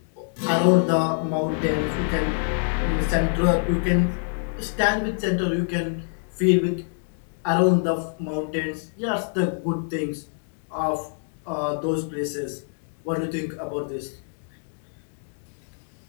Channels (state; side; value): silent; right; digital silence